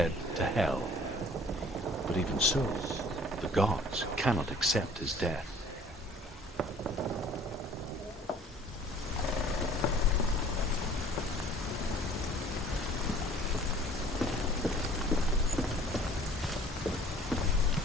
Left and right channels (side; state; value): both; normal; correlation 0.51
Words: to hell. But even so, the gods cannot accept his death.